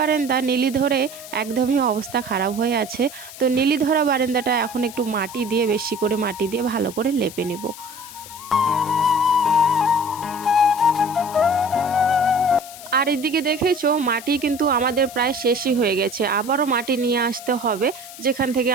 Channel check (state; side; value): noise; left; hiss, 15 dB below the sound